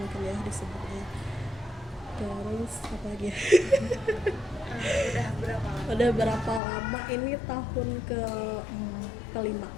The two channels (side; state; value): right; drops out; at 6.6 s